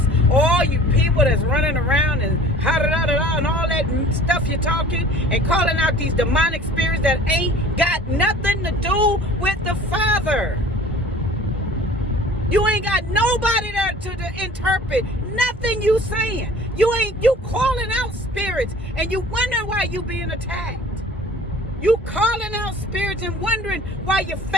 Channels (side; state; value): both; normal; correlation 0.46